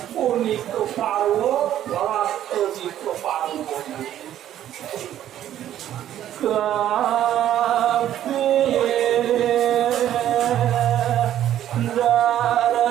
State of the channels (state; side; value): quieter; left; 11.6 dB